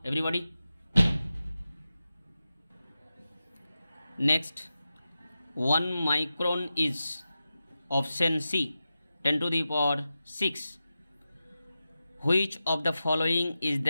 everybody. Next 1 micron is option C 10⁶. Which of the following is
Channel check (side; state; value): both; inverted; correlation -0.92